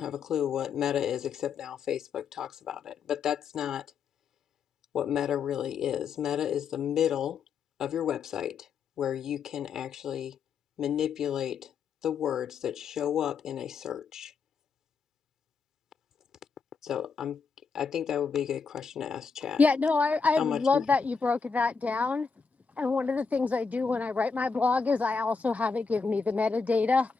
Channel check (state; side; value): quieter; right; 5.4 dB